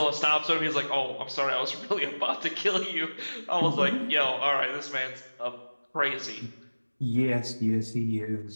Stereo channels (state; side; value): inverted; both; correlation -1.00